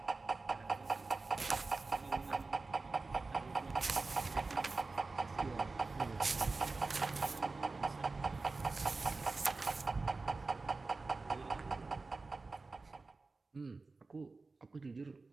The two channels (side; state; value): left; quieter; 3.8 dB